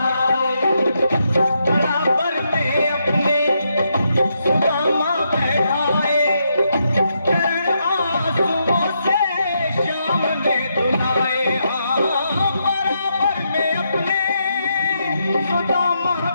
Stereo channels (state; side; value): inverted; both; correlation -0.80